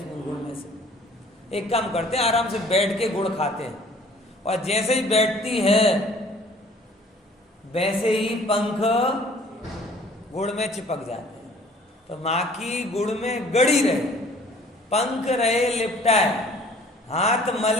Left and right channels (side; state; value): both; normal; correlation 0.53